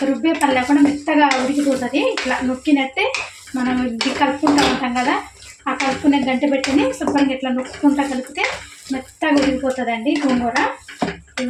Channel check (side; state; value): both; identical; correlation 1.00